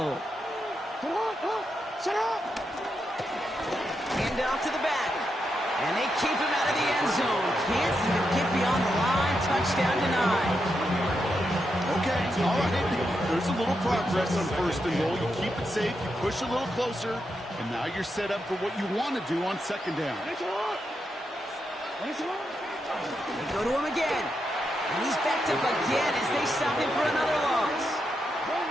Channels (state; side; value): normal; both; correlation 0.84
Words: Hand off to the back. And they keep him out of the end zone. Can't even get beyond the line. Touchdown denied. Okay, all right. There's a little progress on 1st and goal. You keep it safe, you push a little closer, and now you're set up for what you want to do on 2nd down. They go to him again. And he's backed up again as they stop him for another loss.